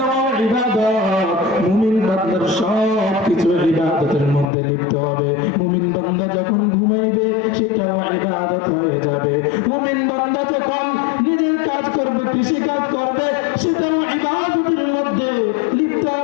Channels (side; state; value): right; drops out; at 4.5 s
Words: ইবাদত, মুমিন বান্দার সব কিছু ইবাদতের মধ্যে লিপ্ত হবে। মুমিন বান্দা যখন ঘুমাইবে সেটাও ইবাদত হয়ে যাবে। মুমিন বান্দা যখন নিজের কাজ করবে, কৃষি কাজ করবে, সেটাও ইবাদতের মধ্যে লিপ্ত